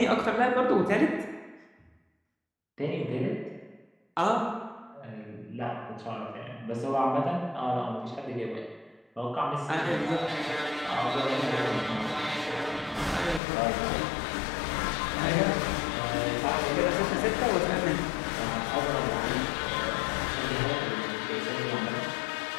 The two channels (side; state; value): right; drops out; at 13.4 s